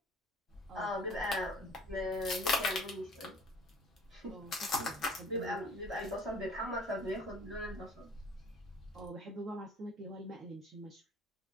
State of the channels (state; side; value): normal; both; correlation 0.51